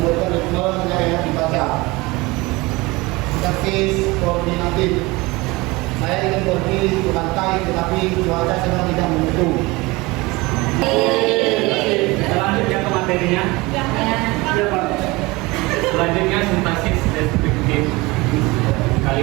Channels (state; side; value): quieter; left; 22.9 dB